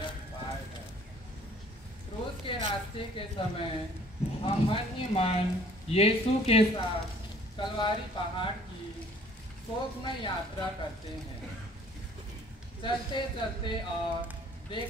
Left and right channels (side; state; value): both; normal; correlation 0.56